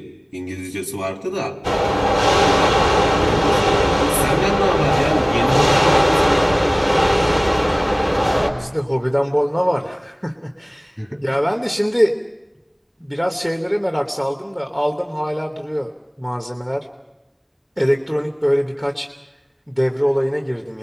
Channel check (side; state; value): both; identical; correlation 1.00